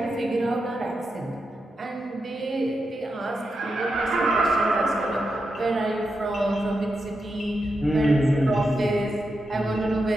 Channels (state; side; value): normal; both; correlation 0.87